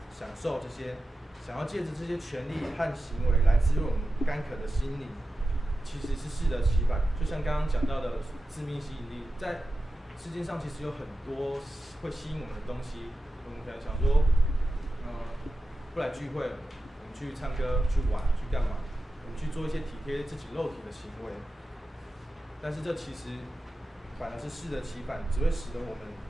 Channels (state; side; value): normal; both; correlation 0.92